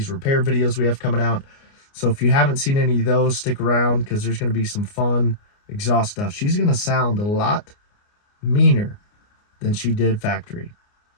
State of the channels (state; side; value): late; right; 29 ms